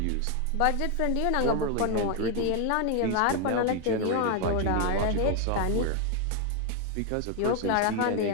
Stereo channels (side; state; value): both; different; correlation 0.01